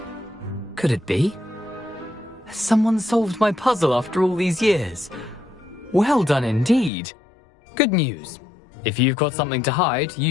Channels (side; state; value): right; drops out; at 6.9 s